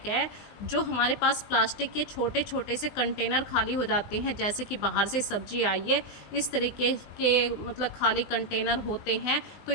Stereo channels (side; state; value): right; late; 20 ms